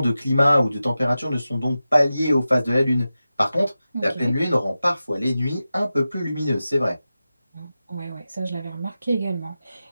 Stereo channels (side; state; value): both; inverted; correlation -0.93